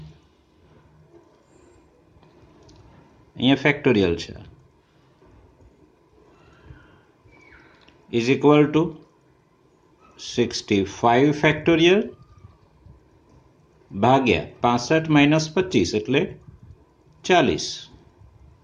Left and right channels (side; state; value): both; identical; correlation 1.00